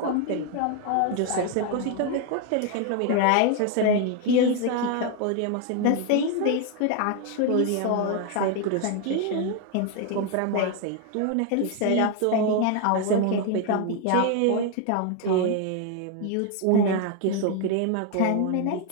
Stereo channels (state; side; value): different; both; correlation 0.01